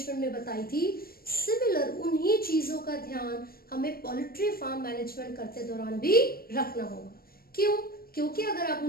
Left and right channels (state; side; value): late; right; 0.44 ms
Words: में बताई थी, सिमिलर उन्हीं चीजों का ध्यान हमें पोल्ट्री फार्म मैनेजमेंट करते दौरान भी रखना होगा। क्यों? क्योंकि अगर आप